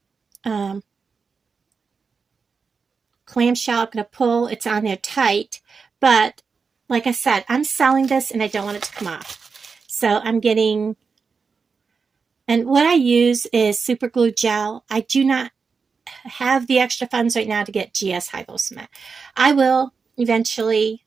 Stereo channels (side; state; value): left; quieter; 5.1 dB